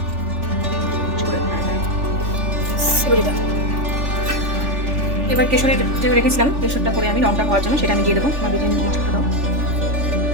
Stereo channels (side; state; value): left; late; 3.4 ms